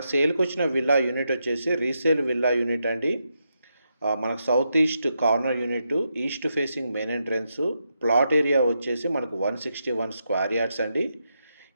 సేల్కి వచ్చిన విల్లా యూనిట్ వచ్చేసి రీసేల్ విల్లా యూనిట్ అండి. మనకు south east corner unit, east facing main entrance, plot area వచ్చేసి మనకు 161 స్క్వేర్ యార్డ్స్ అండి.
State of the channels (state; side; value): inverted; both; correlation -0.84